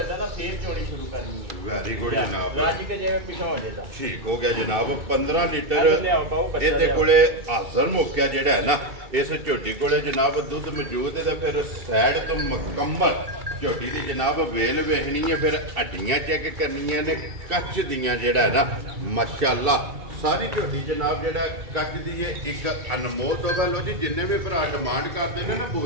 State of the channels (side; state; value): left; late; 2.3 ms